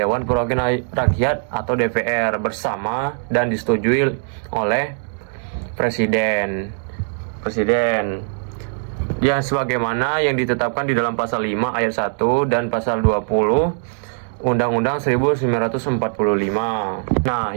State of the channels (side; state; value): left; silent; digital silence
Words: Perwakilan Rakyat atau DPR bersama dan disetujui oleh Presiden ya, sebagaimana yang ditetapkan di dalam pasal 5 ayat 1 dan pasal 20 Undang-Undang 1945. Nah,